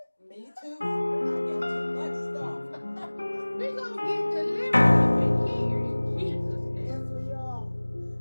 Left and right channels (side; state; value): both; inverted; correlation -1.00